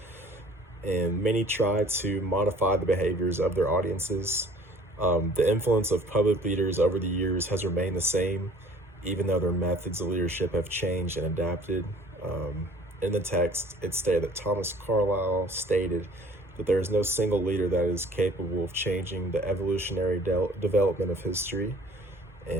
And many try to modify the behaviors of their audiences. The influence of public leaders over the years has remained the same, even though their methods of leadership have changed and adapted. In the text, it stated that Thomas Carlyle stated that there is no single leader that is capable of changing the evolutionary development of history,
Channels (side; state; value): both; normal; correlation 0.52